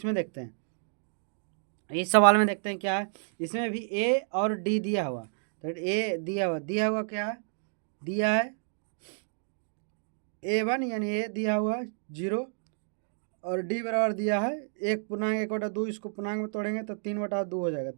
देखते हैं, इस सवाल में देखते हैं क्या है। इसमें भी ए और डी दिया हुआ, तो ए दिया हुआ क्या है, दिया है A1 यानी ए दिया हुआ 0, और डी बराबर दिया है 1/1/2, इसको पूर्णांक में तोड़ेंगे तो 3/2 हो जाएगा,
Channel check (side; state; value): left; silent; digital silence